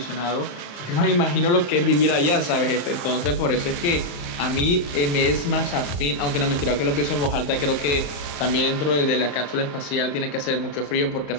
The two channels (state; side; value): late; right; 35 ms